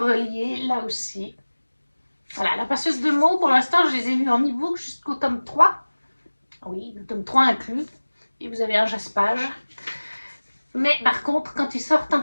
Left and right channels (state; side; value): inverted; both; correlation -1.00